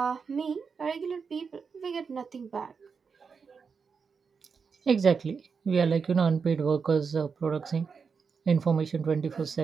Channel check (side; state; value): left; quieter; 5.6 dB